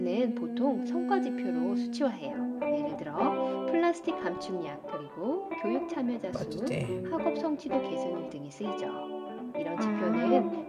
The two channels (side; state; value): both; identical; correlation 1.00